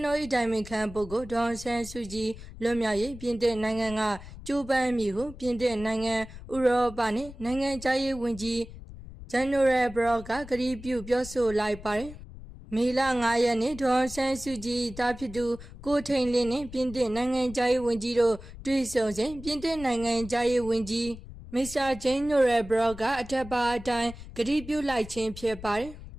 တော်၏တိုင်ပင်ခံပုဂ္ဂိုလ်ဒေါ်အောင်ဆန်းစုကြည်လွတ်မြောက်ရေးပြင်သစ်နိုင်ငံကကြိုးပမ်းမှုဟုပြင်သစ်နိုင်ငံဥရောပနှင့်နိုင်ငံသားရေးဝန်ကြီးGeneral Brock ကကတိပြုပြောဆိုလိုက်ပါတယ်။မေလ9ရက်နေ့ဒေါ်အောင်ဆန်းစုကြည်တာဖြစ်သူကိုထိန်လင်းနှင့်ပြင်သစ်နိုင်ငံသားရေးဝန်ကြီးတို့တွေ့ဆုံစဉ်ပြင်သစ်နိုင်ငံသားရေးဝန်ကြီး Mr. General Brock ကအထက်ပါအတိုင်းကတိပြုလိုက်ခြင်းဖြစ်ပါတယ်။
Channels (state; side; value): noise; left; rumble, 15 dB below the sound